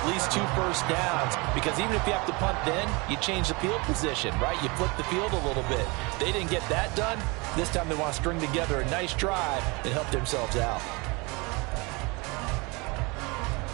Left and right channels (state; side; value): quieter; left; 27.2 dB